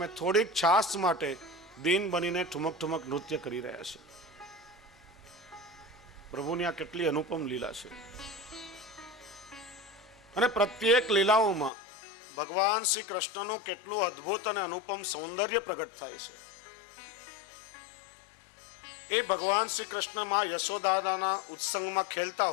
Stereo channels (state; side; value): drops out; right; at 11.7 s